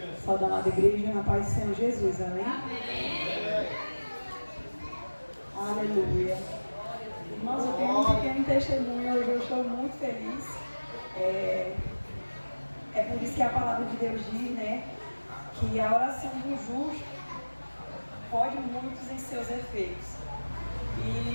Saúde, amada igreja, na paz do Senhor Jesus, amém? Aleluia. Irmãos, eu tenho um pequeno testemunho, hoje eu estou muito feliz. É por isso que a palavra de Deus diz, né, que a oração do justo pode muitos em seus efeitos.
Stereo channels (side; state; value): both; inverted; correlation -1.00